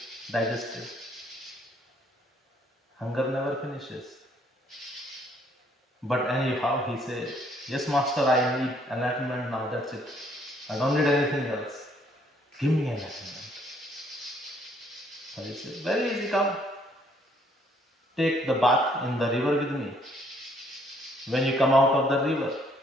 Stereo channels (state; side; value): normal; both; correlation 0.65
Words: digested. Hunger never finishes. But anyhow, he said, yes, master, I need enlightenment now. That's it. I don't need anything else. Give me enlightenment. So he said, very easy, come. Take the bath in the river with me. When you come out of the river,